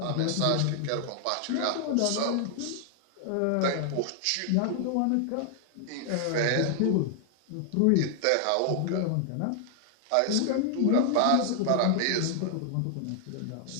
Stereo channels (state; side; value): different; both; correlation 0.00